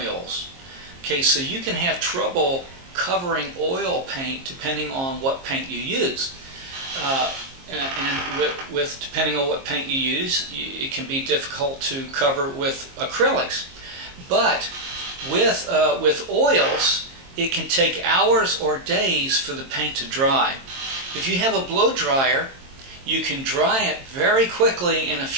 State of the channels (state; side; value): late; left; 22 ms